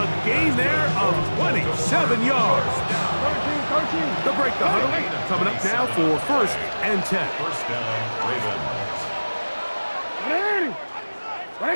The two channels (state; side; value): inverted; both; correlation -1.00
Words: gain there of 27 yards. They'll break the huddle. Coming up now for 1st and 10. First down, Ravens.